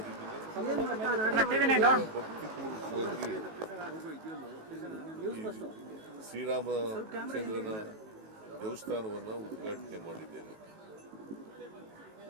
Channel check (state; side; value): late; left; 18 ms